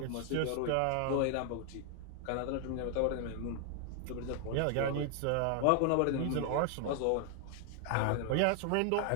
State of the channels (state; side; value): different; both; correlation 0.00